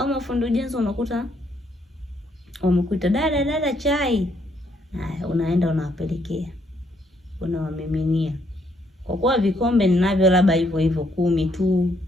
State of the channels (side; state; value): both; normal; correlation 0.71